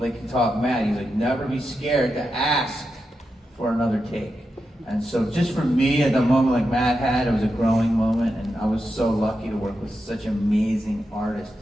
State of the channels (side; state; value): both; normal; correlation 0.88